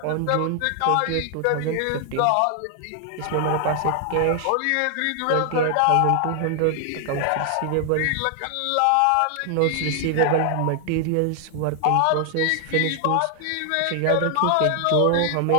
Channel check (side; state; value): both; different; correlation 0.00